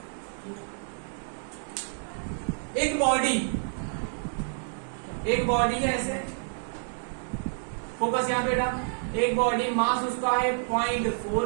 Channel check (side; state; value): left; silent; 59 dB below the other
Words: एक बॉडी है ऐसे, फोकस यहाँ बेटा, एक बॉडी मास उसका है 0.4